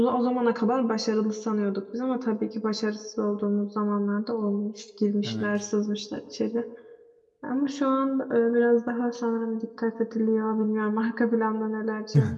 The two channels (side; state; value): both; identical; correlation 1.00